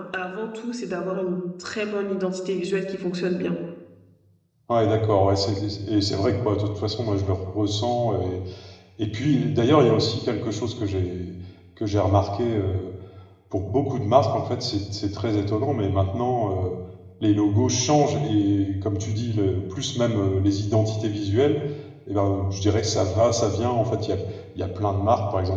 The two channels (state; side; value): identical; both; correlation 1.00